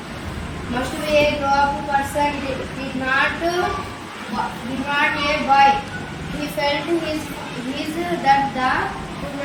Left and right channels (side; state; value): both; identical; correlation 1.00